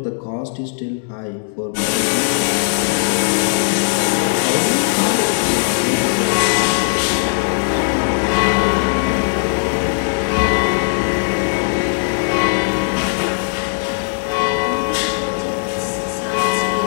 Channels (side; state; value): right; silent; digital silence